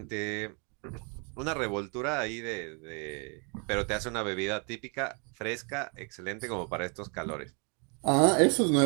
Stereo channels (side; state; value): left; quieter; 35.6 dB